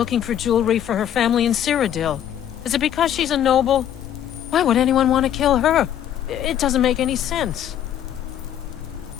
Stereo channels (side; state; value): right; quieter; 10.3 dB